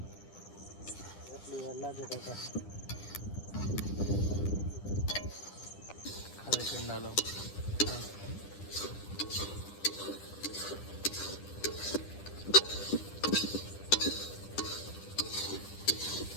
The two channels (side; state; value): right; late; 10 ms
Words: એટલી વાર લાગે તો ખાલી પેંડા લો.